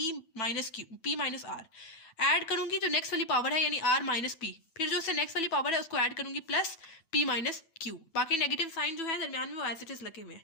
minus Q, P minus R add करूंगी जो नेक्स्ट वाली पावर है, यानी आर माइनस पी, फिर जो उससे नेक्स्ट वाली पावर है उसको ऐड करूंगी प्लस पी माइनस क्यू, बाकी नेगेटिव साइन जो है दरमियान में वो एज इट इज लगे हुए हैं।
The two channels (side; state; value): right; late; 9.1 ms